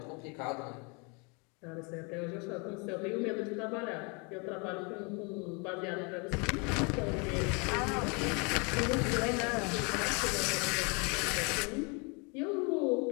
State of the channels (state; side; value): quieter; right; 32.2 dB